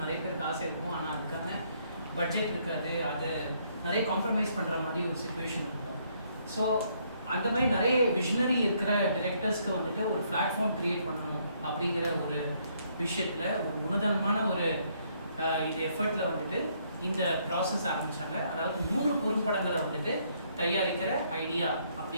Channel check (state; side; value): inverted; both; correlation -0.70